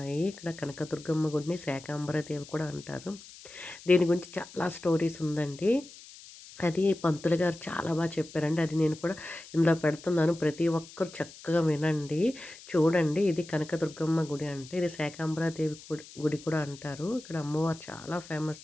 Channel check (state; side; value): noise; left; hiss, 18 dB below the sound